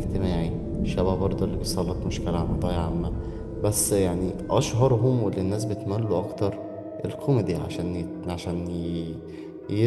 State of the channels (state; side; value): identical; both; correlation 1.00